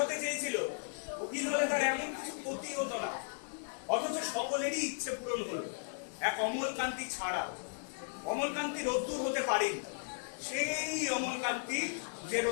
চেয়েছিল, উকিল হলে তার এমন কিছু ক্ষতি হতো না, অথচ সকলেরই ইচ্ছে পূরণ হলো, এক অমলকান্তি ছাড়া। অমলকান্তি রোদ্দুর হতে পারেনি, সেই অমলকান্তি যে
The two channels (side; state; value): right; silent; digital silence